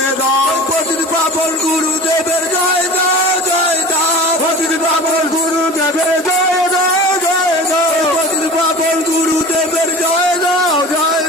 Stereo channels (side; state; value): both; normal; correlation 0.37